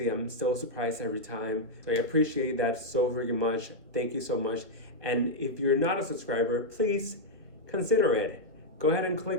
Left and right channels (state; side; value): late; left; 1.4 ms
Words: am still surprised every time. So I appreciate that so freaking much. Thank you so much. And if you're not a subscriber, please consider it. Go ahead and